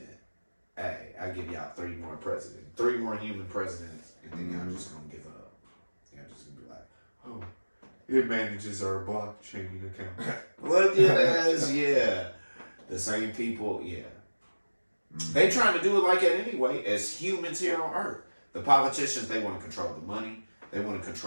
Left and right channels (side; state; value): both; inverted; correlation -1.00